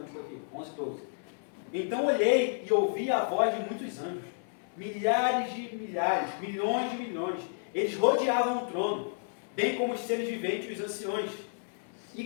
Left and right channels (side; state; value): right; silent; 56 dB below the other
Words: aqui? 11 e 12. Então olhei e ouvi a voz de muitos anjos, milhares de milhares, milhões de milhões. Eles rodeavam o trono, bem como os seres viventes e os anciões, e